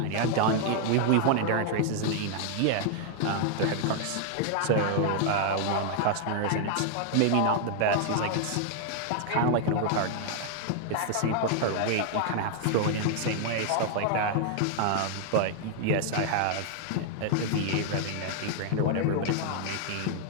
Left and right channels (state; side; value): different; both; correlation 0.00